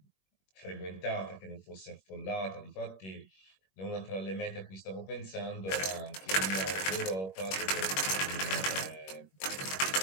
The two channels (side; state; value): right; late; 21 ms